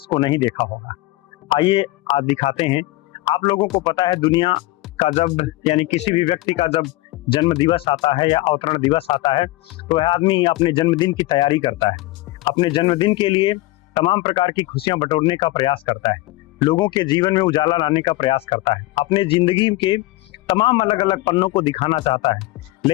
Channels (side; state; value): right; quieter; 18.9 dB